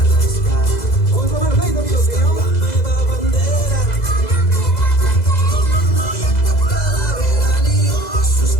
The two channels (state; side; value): late; right; 2.0 ms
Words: Os lo merecéis, amigos míos.